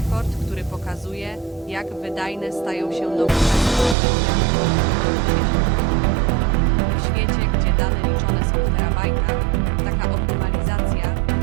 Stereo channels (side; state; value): left; drops out; at 4.0 s